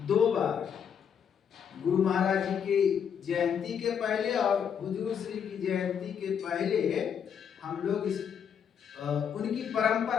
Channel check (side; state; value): right; quieter; 7.8 dB